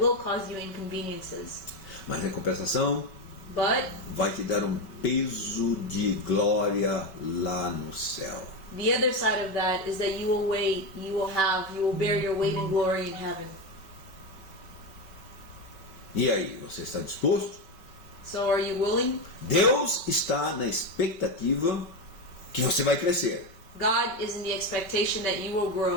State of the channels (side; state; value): right; late; 5.2 ms